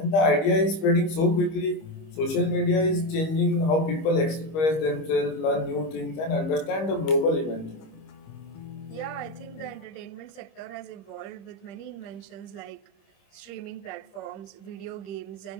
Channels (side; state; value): right; late; 25 ms